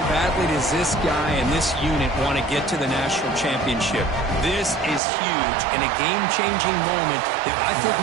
badly does this guy and this unit want to get to the national championship? This is huge and a game-changing moment that I think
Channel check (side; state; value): left; drops out; at 5.0 s